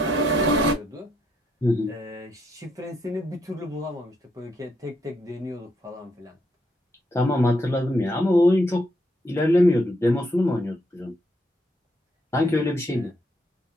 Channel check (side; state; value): both; normal; correlation 0.76